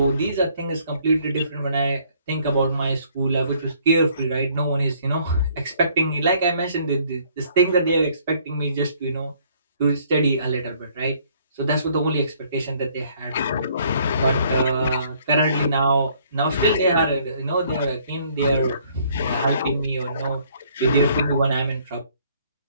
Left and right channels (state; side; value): inverted; both; correlation -0.62